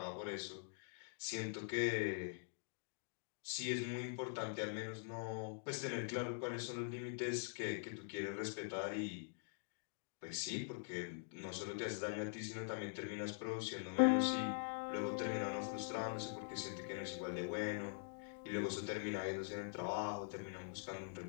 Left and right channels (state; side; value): silent; right; digital silence